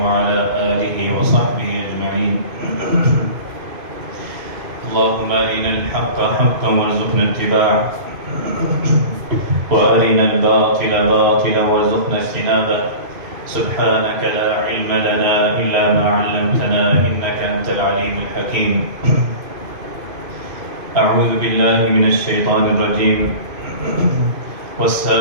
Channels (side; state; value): left; late; 2.5 ms